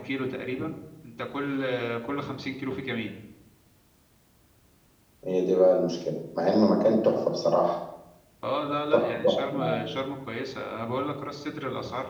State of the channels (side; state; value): both; identical; correlation 1.00